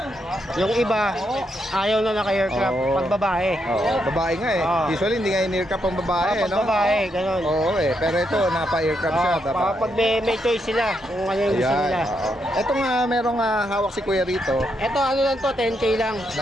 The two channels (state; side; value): normal; both; correlation 0.80